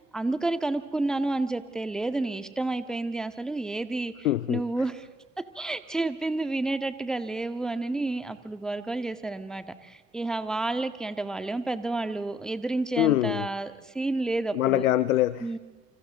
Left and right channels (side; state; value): both; normal; correlation 0.67